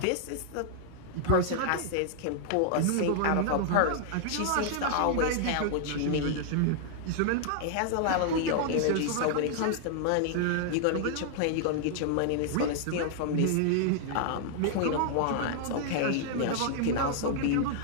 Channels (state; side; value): different; both; correlation -0.01